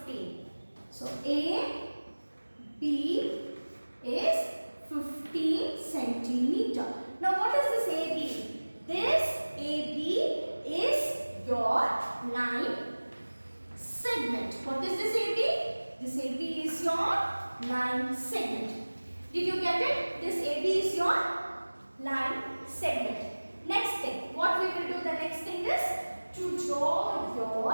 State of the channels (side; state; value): both; inverted; correlation -1.00